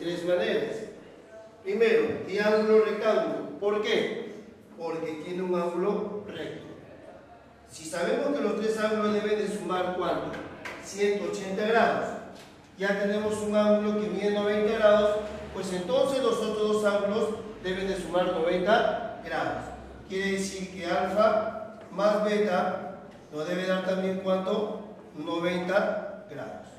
maneras. Primero, triángulo rectángulo. ¿Por qué? Porque tiene un ángulo recto. Si sabemos que los tres ángulos deben de sumar ¿cuánto? 180 grados. Ya tenemos un ángulo que mide 90 grados, pues entonces los otros dos ángulos deben de sumar 90 grados. Quiere decir que alfa más beta nos debe dar también ¿cuánto? 90 grados.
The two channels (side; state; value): both; identical; correlation 1.00